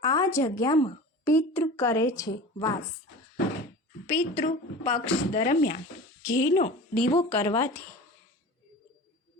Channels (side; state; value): both; normal; correlation 0.35